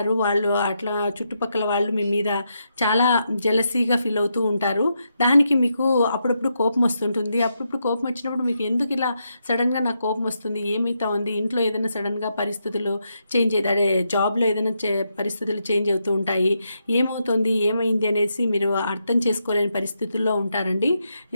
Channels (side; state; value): both; inverted; correlation -0.82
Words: వాళ్ళు. అట్లా చుట్టుపక్కల వాళ్ళు మీ మీద చాలా జెలసీగా ఫీల్ అవుతూ ఉంటారు. దానికి మీకు అప్పుడప్పుడు కోపం వస్తుంటుంది. అప్పుడప్పుడు కోపం వచ్చినప్పుడు మీకు ఎందుకు ఇలా సడన్గా నాకు కోపం వస్తుంది, ఏమైతా ఉంది, ఇంట్లో ఏదైనా సడన్గా పరిస్థితులు చేంజ్ అదే జాబ్లో ఏదైనా పరిస్థితులు చేంజ్ అవుతూ ఉంటాయి, ఏమవుతుంది ఏమైంది అనేసి మీరు అర్థం చేసుకోలేని పరిస్థితుల్లో ఉంటారండి.